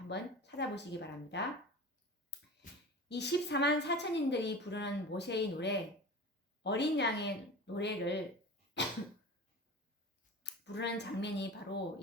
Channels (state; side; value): normal; both; correlation 0.34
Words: 찾아보시기 바랍니다. 이 14만 4천인들이 부르는 모세의 노래, 어린 양의 노래를 부르는 장면이 바로